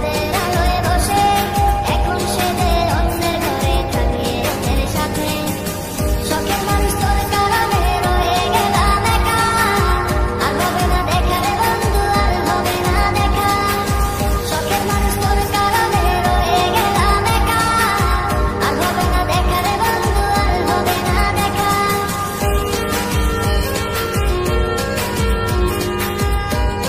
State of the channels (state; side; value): identical; both; correlation 1.00